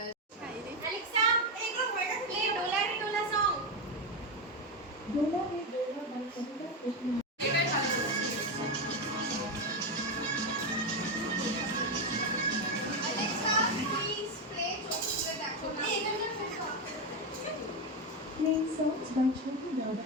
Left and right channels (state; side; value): normal; both; correlation 0.10